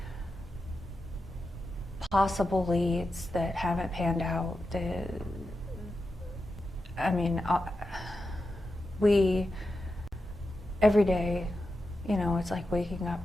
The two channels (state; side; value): normal; both; correlation 0.90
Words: possible leads that haven't panned out. We every day, you know, it's like waking up